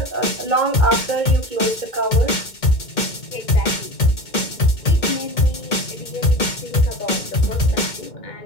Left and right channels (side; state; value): right; late; 2.2 ms